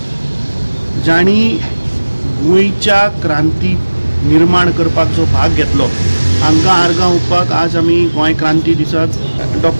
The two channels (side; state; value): both; inverted; correlation -1.00